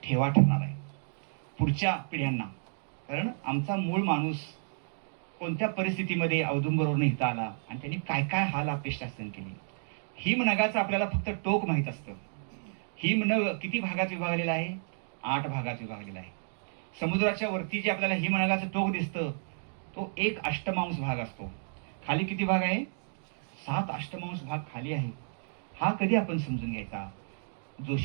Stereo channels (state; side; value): silent; left; digital silence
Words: ठेवा ठरणार आहे पुढच्या पिढ्यांना. कारण आमचा मूळ माणूस कोणत्या परिस्थितीमध्ये औदुंबरवरून इथं आला आणि त्यांनी काय काय हाल अपेष्टा सहन केली. हिमनगाचं आपल्याला फक्त टोक माहीत असतं. हिमनग किती भागात विभागलेला आहे, 8 भागात विभागलेला आहे. समुद्राच्या वरती जे आपल्याला हिमनगाचं टोक दिसतं तो 1 अष्टमांश भाग असतो. खाली किती भाग आहे, 7 अष्टमांश भाग खाली आहे. हा कधी आपण समजून घ्यायचा.